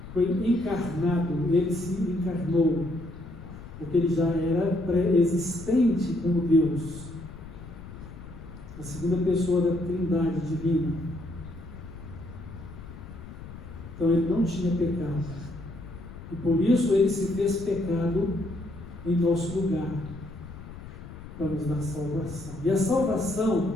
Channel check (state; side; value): noise; left; rumble, 14 dB below the sound